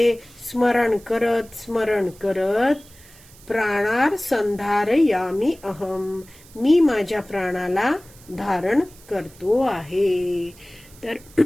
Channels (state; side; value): noise; right; hiss, 24 dB below the sound